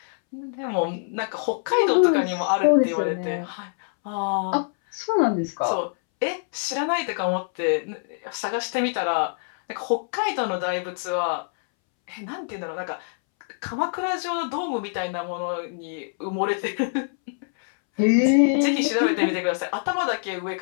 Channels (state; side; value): silent; right; 62 dB below the other